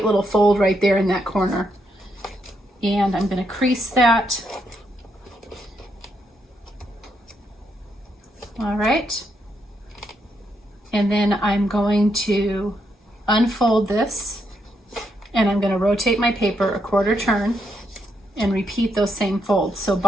fold right there in that corner. And I'm going to crease that. All right. And then I'm going to unfold this, and I'm going to rotate my paper a quarter turn and repeat those same folds. So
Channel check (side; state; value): both; normal; correlation 0.78